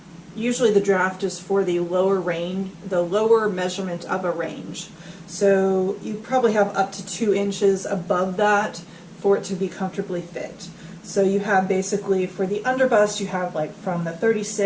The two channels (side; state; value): both; identical; correlation 1.00